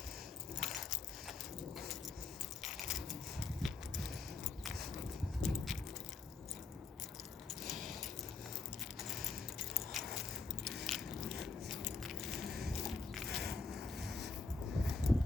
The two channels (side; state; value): right; quieter; 4.3 dB